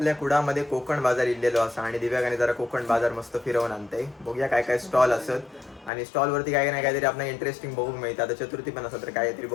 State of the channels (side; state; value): right; drops out; at 5.9 s